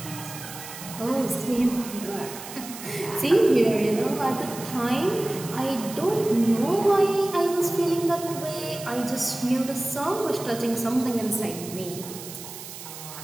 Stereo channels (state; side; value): noise; right; hiss, 12 dB below the sound